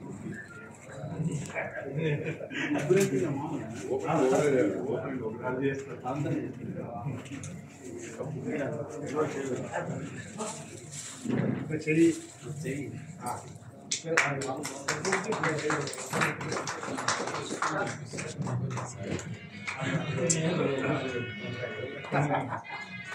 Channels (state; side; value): identical; both; correlation 1.00